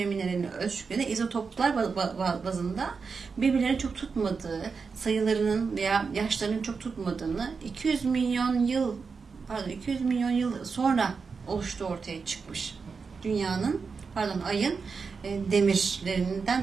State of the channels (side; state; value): left; quieter; 5.1 dB